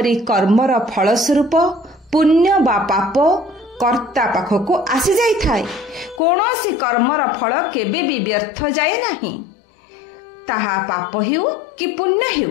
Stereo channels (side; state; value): right; drops out; at 6.2 s